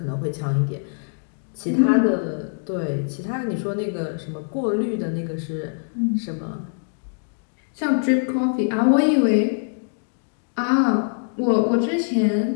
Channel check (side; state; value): right; silent; digital silence